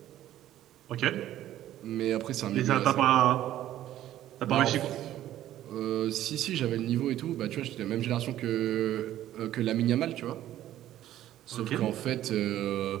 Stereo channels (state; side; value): quieter; left; 12.9 dB